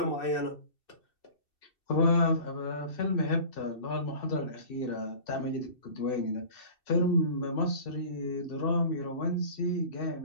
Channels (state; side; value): late; right; 2.6 ms